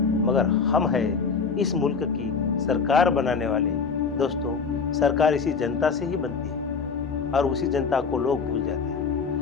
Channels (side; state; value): right; quieter; 5.4 dB